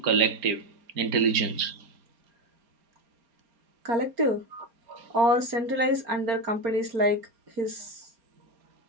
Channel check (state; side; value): late; left; 4.3 ms